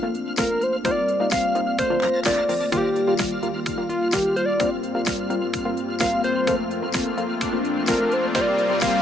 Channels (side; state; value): both; normal; correlation 0.77